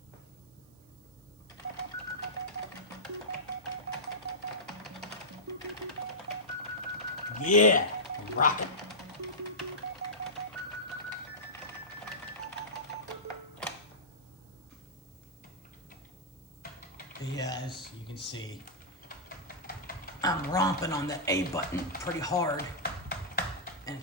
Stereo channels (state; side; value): noise; right; hiss, 29 dB below the sound